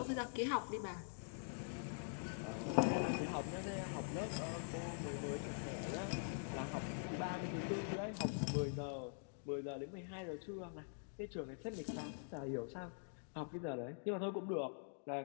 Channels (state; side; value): silent; right; digital silence